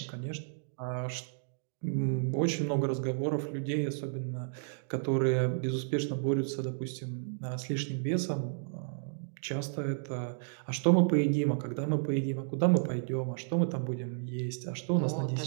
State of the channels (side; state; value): left; silent; digital silence